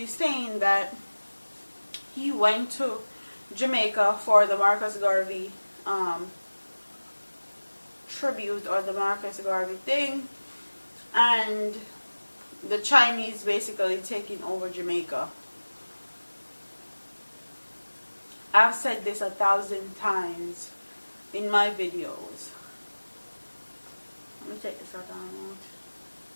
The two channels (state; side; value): inverted; both; correlation -1.00